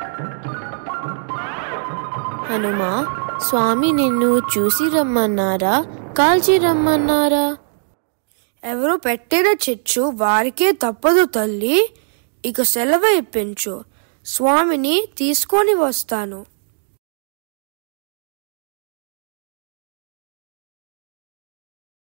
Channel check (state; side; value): silent; left; digital silence